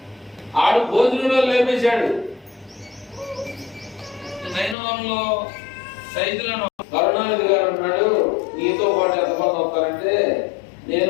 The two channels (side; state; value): right; drops out; at 4.8 s